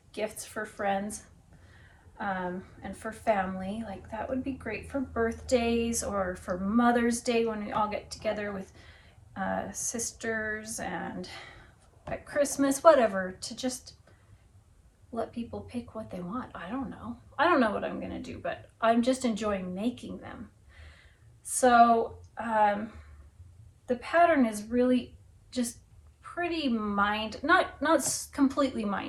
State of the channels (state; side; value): identical; both; correlation 1.00